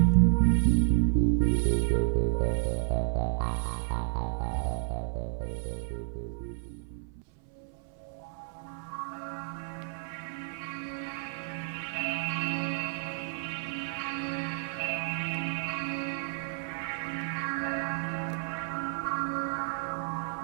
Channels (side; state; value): left; silent; 57 dB below the other